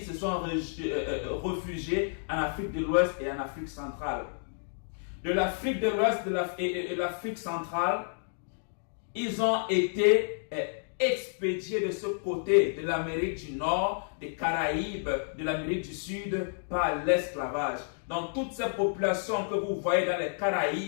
se sont réfugiés en Afrique de l'Ouest et en Afrique centrale. De l'Afrique de l'Ouest et de l'Afrique centrale, ils ont été expédiés de ce côté de l'Amérique du Nord, des Caraïbes, de l'Amérique du Sud par l'esclavage. Donc toutes ces populations que vous voyez dans les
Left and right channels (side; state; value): right; silent; digital silence